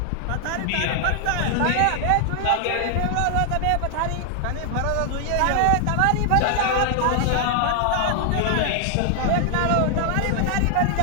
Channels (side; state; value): both; different; correlation 0.00